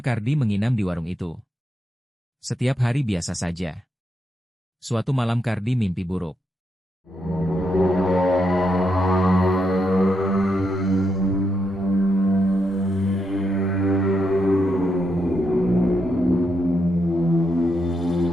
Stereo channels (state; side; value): normal; both; correlation 0.82